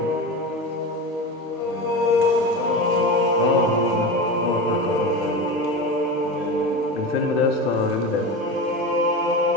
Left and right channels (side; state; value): both; normal; correlation 0.25